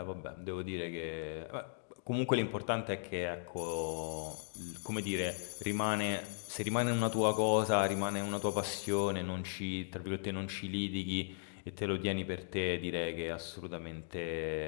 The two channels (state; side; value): silent; right; digital silence